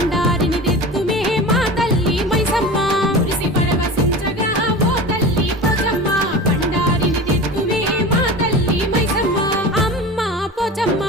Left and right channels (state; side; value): normal; both; correlation 0.32